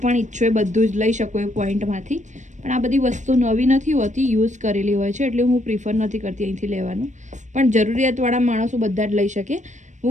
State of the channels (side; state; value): left; late; 0.35 ms